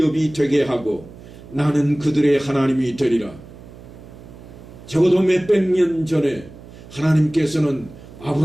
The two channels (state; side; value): noise; right; hum, 18 dB below the sound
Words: 되게 하고 나는 그들의 하나님이 되리라. 적어도 몇백 년 전에 하나님께서는